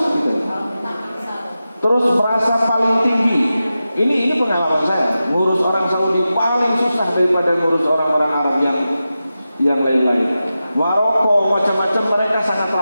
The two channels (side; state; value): both; inverted; correlation -0.92